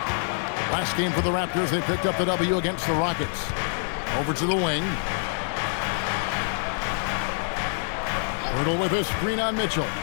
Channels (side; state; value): right; silent; digital silence